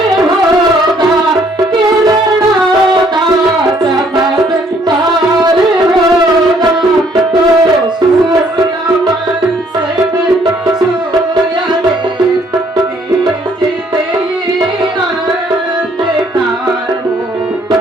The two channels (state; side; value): normal; both; correlation 0.64